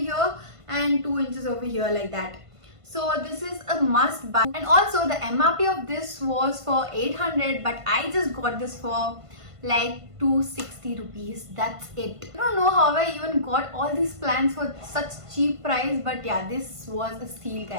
and 2 inches over here, like that. So this is a must buy. And also the MRP of this was for 800, but I just got this for like 260 rupees. That's it. I don't know how I even got all these plants for such cheap price, but yeah, this was a steal,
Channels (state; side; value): late; left; 1.5 ms